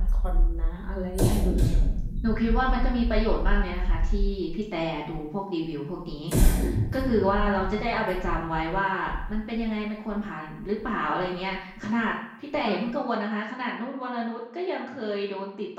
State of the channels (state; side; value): identical; both; correlation 1.00